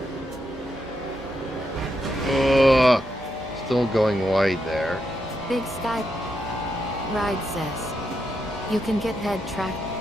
Ugh, still going wide there. Big Sky Ride says, you can get head track.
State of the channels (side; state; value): both; normal; correlation 0.82